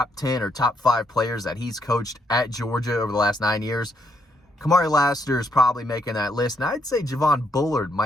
10 or top 5 players that he's coached at Georgia over the last 9 years, Kamari Lassiter is probably making that list. And I'd say Javon Bullard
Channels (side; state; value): both; normal; correlation 0.75